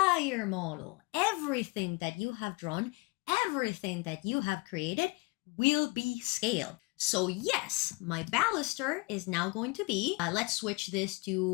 model. Everything that you have drawn, everything that you have created will be scaled. So yes, my baluster is now going to be, let's switch this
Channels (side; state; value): right; quieter; 28.7 dB